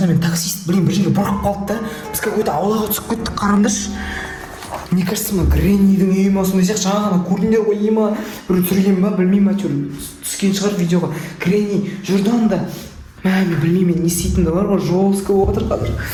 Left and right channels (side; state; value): both; identical; correlation 1.00